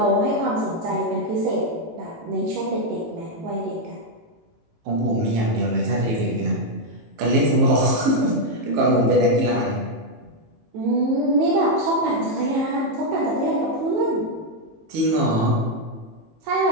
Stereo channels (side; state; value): left; late; 18 ms